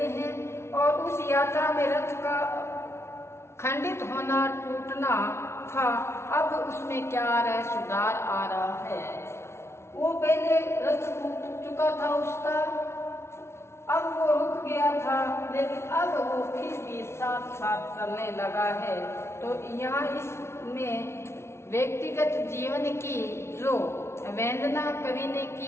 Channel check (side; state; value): right; late; 0.13 ms